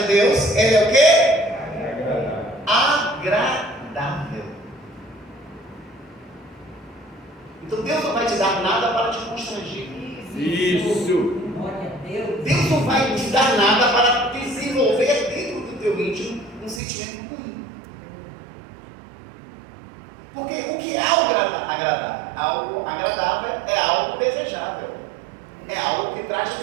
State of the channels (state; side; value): drops out; left; at 16.8 s